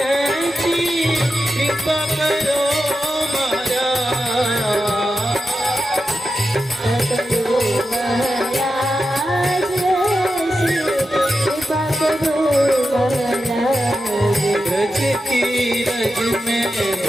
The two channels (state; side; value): normal; both; correlation 0.90